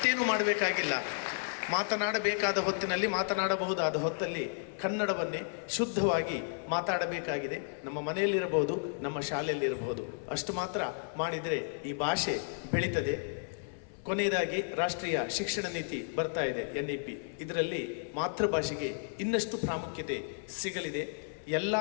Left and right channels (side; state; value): right; silent; 56 dB below the other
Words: ಮಾಡಬೇಕಾಗಿಲ್ಲ. ಮಾತನಾಡಬೇಕಾದ ಹೊತ್ತಿನಲ್ಲಿ, ಮಾತನಾಡಬಹುದಾದ ಹೊತ್ತಲ್ಲಿ ಕನ್ನಡವನ್ನೇ ಶುದ್ಧವಾಗಿ ಮಾತಾಡಬೇಕಾಗಿದೆ. ನಮ್ಮ ಮನೆಯಲ್ಲಿರಬಹುದು, ನಮ್ಮ ಶಾಲೆಯಲ್ಲಿರಬಹುದು. ಅಷ್ಟು ಮಾತ್ರ ಮಾಡಿದರೆ ಈ ಭಾಷೆ ಬೆಳೀತದೆ. ಕೊನೆಯದಾಗಿ ರಾಷ್ಟ್ರೀಯ ಶಿಕ್ಷಣ ನೀತಿ ಬರ್ತಾ ಇದೆ, NEP. ಇದರಲ್ಲಿ ಮಾತೃಭಾಷೆಗೆ ಇನ್ನಷ್ಟು ಪ್ರಾಮುಖ್ಯತೆ ಸಿಗಲಿದೆ. ಎಲ್ಲ